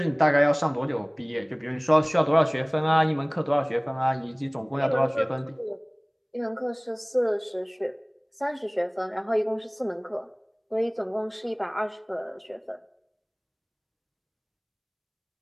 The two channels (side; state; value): both; identical; correlation 1.00